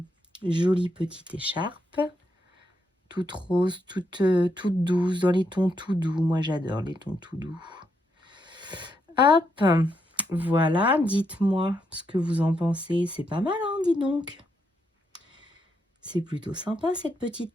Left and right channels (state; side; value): normal; both; correlation 0.79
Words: Jolie petite écharpe. Toute rose, toute douce, dans les tons tout doux. Moi, j'adore les tons tout doux. Hop, voilà, dites-moi ce que vous en pensez. C'est pas mal, hein, dis donc. C'est plutôt sympa, cette petite